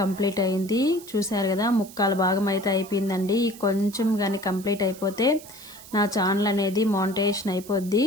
అయింది. చూసారు కదా, ముక్కాల భాగం అయితే అయిపోయిందండి. కొంచెం కానీ కంప్లీట్ అయిపోతే నా ఛానల్ అనేది మానిటైజేషన్ అయిపోద్ది.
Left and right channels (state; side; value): noise; right; hiss, 18 dB below the sound